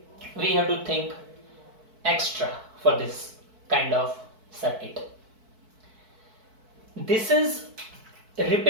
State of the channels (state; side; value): late; left; 4.6 ms